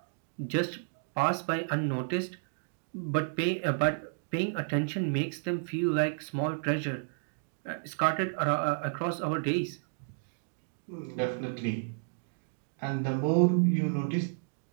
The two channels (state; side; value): silent; left; digital silence